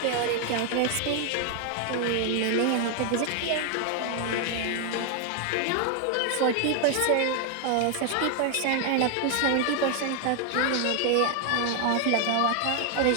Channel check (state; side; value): different; both; correlation 0.00